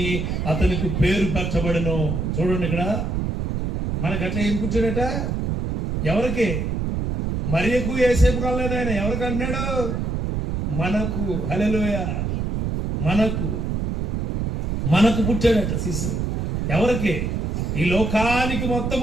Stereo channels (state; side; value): noise; right; rumble, 1 dB below the sound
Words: అతనికి పేరు పెట్టబడెను. చూడండి ఇక్కడ మనకట్లా ఏం పుట్టాడట? ఎవరికి? మరియకు యేసేపు కాలేదు ఆయన. ఎవరికి అన్నాడు? మనకు. హల్లెలూయా. మనకు పుట్టాడట శిశువు. ఎవరికి? ఈ లోకానికి